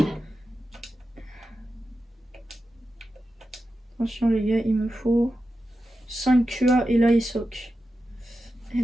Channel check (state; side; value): normal; both; correlation 0.91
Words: Attention les gars, il me faut 5 QA et la ESOC. Eh